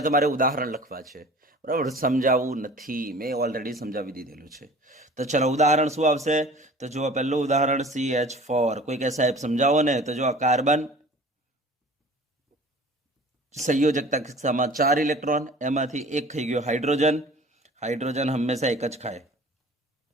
તમારે ઉદાહરણ લખવા છે, બરાબર. સમજાવવું નથી, મેં ઓલરેડી સમજાવી દીધેલું છે. તો ચલો, ઉદાહરણ શું આવશે? તો જુઓ, પહેલું ઉદાહરણ CH4. કોઈ કે સાહેબ સમજાવો ને? તો જો આ કાર્બન સંયોજકતા કિસ્સામાં 4 ઇલેક્ટ્રોન, એમાંથી એક થઈ ગયો હાઇડ્રોજન. હાઇડ્રોજન હંમેશા એક જ ખાય.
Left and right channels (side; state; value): both; normal; correlation 0.45